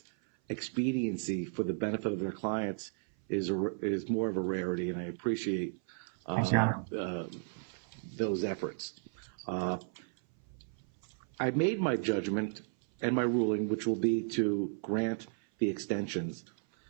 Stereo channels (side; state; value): left; silent; 55 dB below the other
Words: expediency for the benefit of their clients is more of a rarity, and I appreciate those efforts. I made my judgment and my ruling, which will be to grant the extensions,